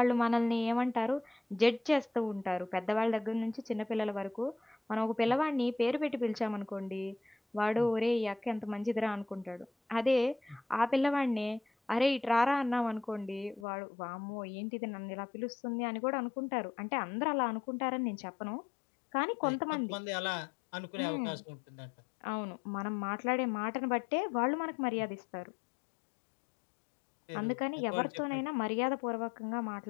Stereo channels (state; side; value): drops out; right; at 13.7 s